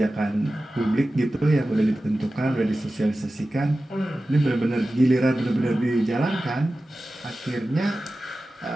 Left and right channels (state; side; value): normal; both; correlation 0.95